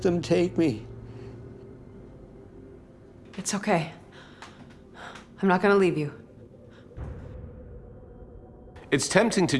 them take me. It's okay. I'm not gonna leave you. It's tempting to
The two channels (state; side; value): identical; both; correlation 1.00